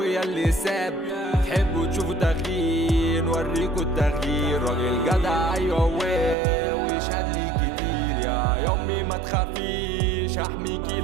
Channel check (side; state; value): left; drops out; at 6.4 s